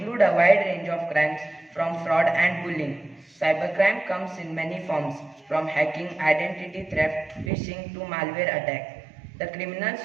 a wide range of crimes from fraud and bullying. Cybercrime comes in many forms, from hacking, identity theft, phishing to malware attack. The criminals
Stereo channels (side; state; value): left; drops out; at 7.5 s